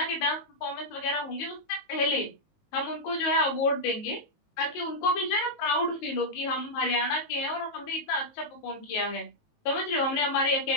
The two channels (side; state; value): right; late; 19 ms